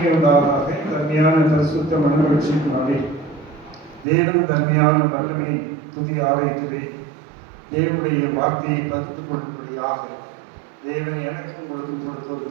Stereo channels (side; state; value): left; drops out; at 4.0 s